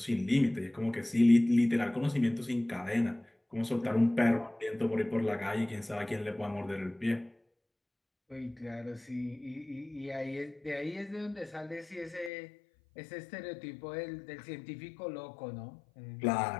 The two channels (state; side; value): drops out; right; at 12.3 s